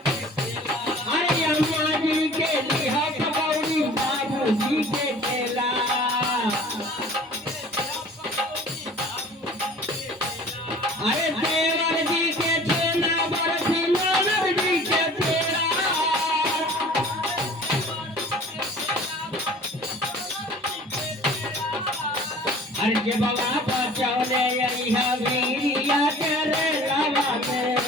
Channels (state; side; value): normal; both; correlation 0.46